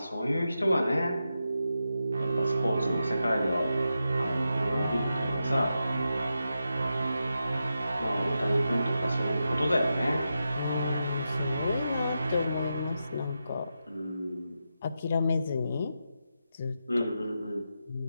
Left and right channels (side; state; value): both; inverted; correlation -0.88